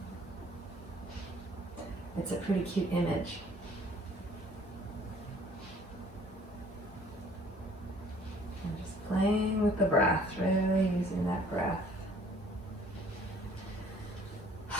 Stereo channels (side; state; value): both; normal; correlation 0.56